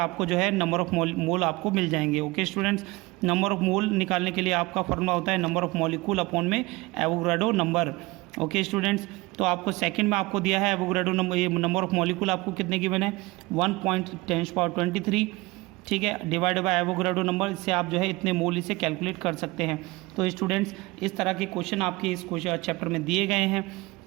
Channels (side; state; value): left; quieter; 22.3 dB